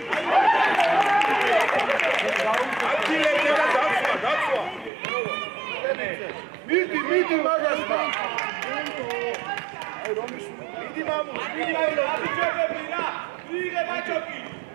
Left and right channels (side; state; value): left; drops out; at 4.9 s